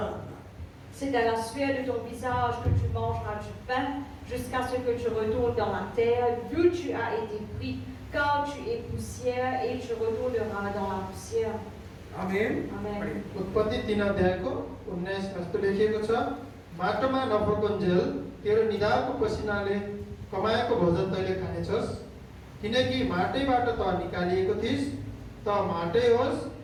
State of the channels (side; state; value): both; identical; correlation 1.00